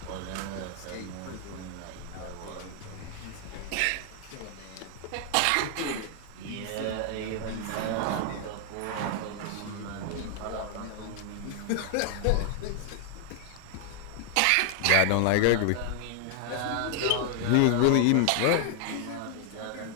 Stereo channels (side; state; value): both; different; correlation 0.00